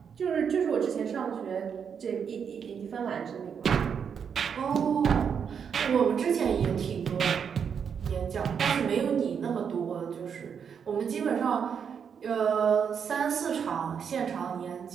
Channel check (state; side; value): quieter; left; 7.1 dB